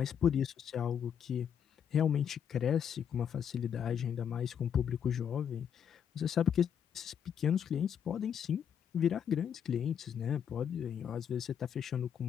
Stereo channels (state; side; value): quieter; right; 8.3 dB